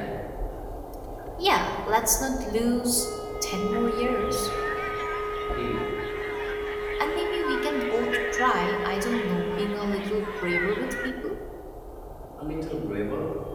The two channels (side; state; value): both; identical; correlation 1.00